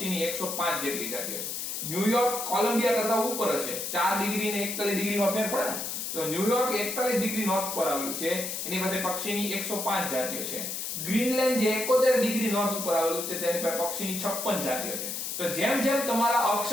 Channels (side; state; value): left; noise; hiss, 4 dB below the sound